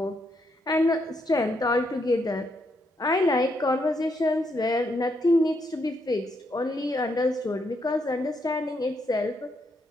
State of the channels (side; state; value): both; normal; correlation 0.77